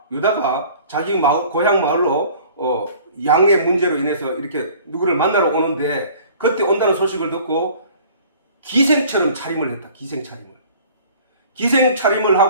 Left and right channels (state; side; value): inverted; both; correlation -0.49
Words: 유다가 자기 고향 마을로 양의 문제로 인해서 이렇게 누구를 만나러 오는데, 그때 온다는 소식을 듣고 기생처럼 차림을 했다. 기생차림을